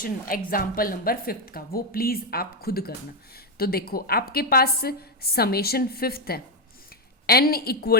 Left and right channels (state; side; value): normal; both; correlation 0.05